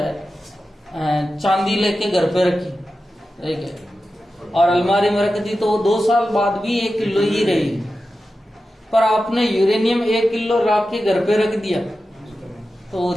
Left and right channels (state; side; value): normal; both; correlation 0.92